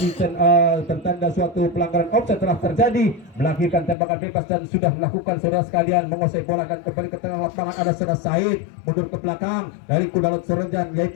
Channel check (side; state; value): right; drops out; at 4.0 s